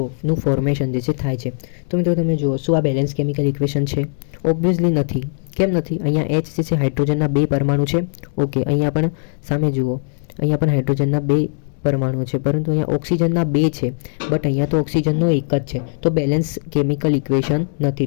નું ફોર્મેશન જે છે થાય છે. તો મિત્રો તમે જુઓ, શું આ બેલેન્સ કેમિકલ ઇક્વેશન છે? ઓબ્વિયસલી નથી. કેમ નથી? અહીંયા H જે છે હાઇડ્રોજનના 2 પરમાણુ છે. ઓકે, અહીંયા પણ સામે જુઓ, અહીંયા પણ હાઇડ્રોજનના 2 પરમાણુ છે, પરંતુ અહીંયા ઓક્સિજનના 2 છે, બટ અહીંયા તો ઓક્સિજનનો એક જ છે. તો બેલેન્સ કેમિકલ ઇક્વેશન નથી.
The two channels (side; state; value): right; silent; digital silence